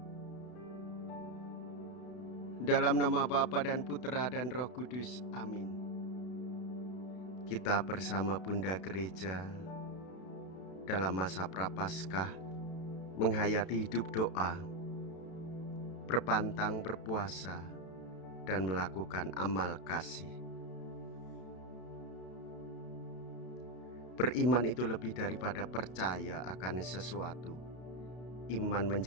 Dalam nama Bapa dan Putra dan Roh Kudus, amin. Kita bersama Bunda Gereja dalam masa Prapaskah menghayati hidup doa, berpantang berpuasa, dan melakukan amal kasih. Beriman itu lebih daripada percaya akan sesuatu. Iman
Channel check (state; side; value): late; right; 32 ms